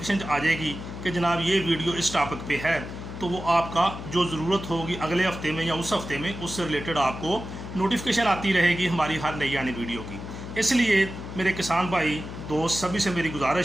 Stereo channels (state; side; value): noise; left; hum, 10 dB below the sound